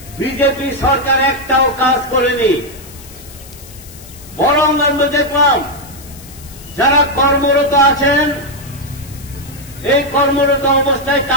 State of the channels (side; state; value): left; noise; hiss, 19 dB below the sound